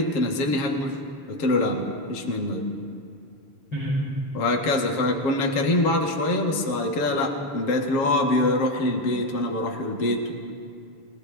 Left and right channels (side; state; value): right; late; 7.3 ms